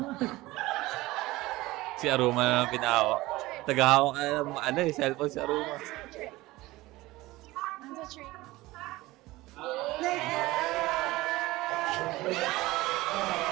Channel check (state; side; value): quieter; left; 19.1 dB